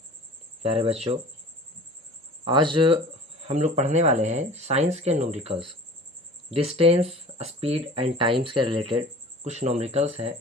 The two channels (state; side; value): normal; both; correlation 0.42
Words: प्यारे बच्चों, आज हम लोग पढ़ने वाले हैं साइंस के numericals. Distance, speed and times के रिलेटेड कुछ न्यूमेरिकल्स हैं,